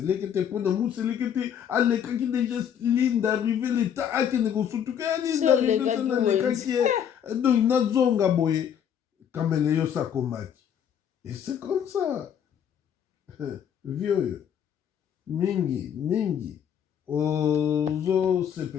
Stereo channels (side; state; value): right; quieter; 8.8 dB